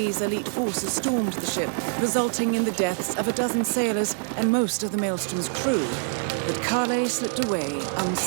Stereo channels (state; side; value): silent; left; 62 dB below the other